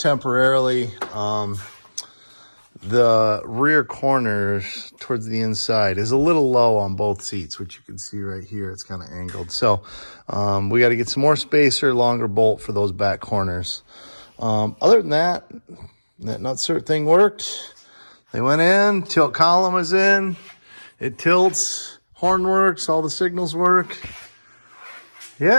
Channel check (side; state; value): both; inverted; correlation -1.00